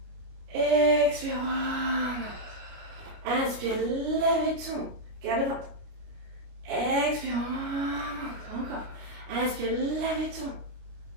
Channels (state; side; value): late; left; 28 ms